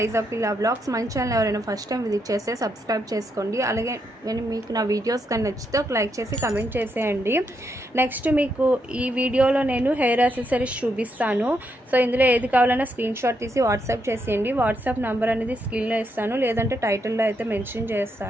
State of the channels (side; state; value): both; normal; correlation 0.79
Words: పిల్లా blogs. మన ఛానల్ ఎవరైనా ఫస్ట్ టైం విజిట్ చేస్తే సబ్స్క్రైబ్ చేసుకోండి. అలాగే మీకు నా వీడియోస్ కానీ నచ్చితే ఒక లైక్ చేసి కమెంట్ చేసేయండి. నెక్స్ట్ మీకు ఈ వీడియోలో నేను హెయిర్ యాక్సెసరీస్ చూపిస్తాను. సో ఇందులో ఏది కావాలన్నా స్క్రీన్ షాట్ తీసి వాట్సాప్ చేసేయండి. వాట్సాప్ నెంబర్ అనేది స్క్రీన్లో ఇస్తాను, లేదంటే టైటిల్లో అయితే మెన్షన్